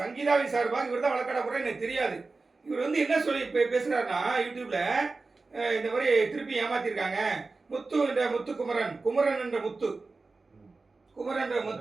சார்பாக இவர் தான் வழக்காட போறாரு எனக்கு தெரியாது. இவர் வந்து என்ன சொல்லி பேசுறாருன்னா யூடியூப்ல, இந்த மாதிரி திருப்பி ஏமாத்திருக்காங்க, முத்து என்ற முத்துக்குமரன், குமரன் என்ற முத்து, குமரன் என்ற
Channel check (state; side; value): quieter; left; 3.8 dB